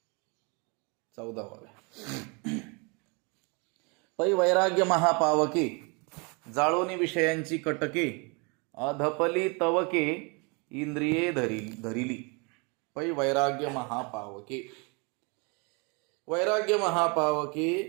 14 ओव्या. पै वैराग्य महापावके जाळोनी विषयांची कटके अधपली तवके इंद्रिये धरिली. पै वैराग्य महापावके, वैराग्य महापावके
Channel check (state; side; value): quieter; left; 31.4 dB